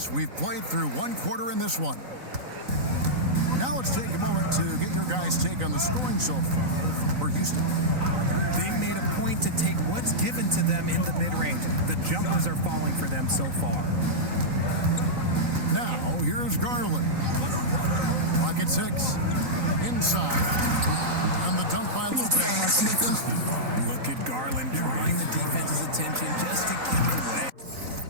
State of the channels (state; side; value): late; left; 3.9 ms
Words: we've played through 1 quarter in this one. Now let's take a moment to get your guys' take on the scoring so far for Houston. They've made a point to take what's given to them in the mid-range. The jumpers are falling for them so far. Now, here's Garland. Pocket 6. Inside. And the dunk by Lopez. Look at Garland drawing the defense's attention just to give it away.